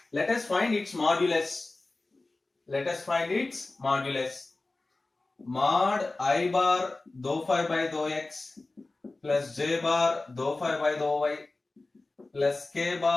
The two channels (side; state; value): right; quieter; 3.2 dB